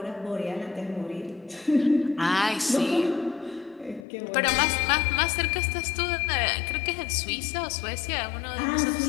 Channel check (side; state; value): right; drops out; at 4.0 s